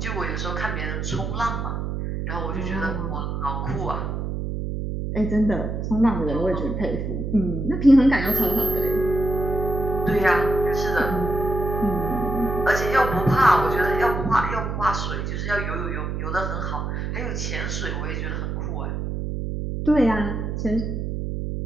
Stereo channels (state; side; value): noise; right; hum, 3 dB below the sound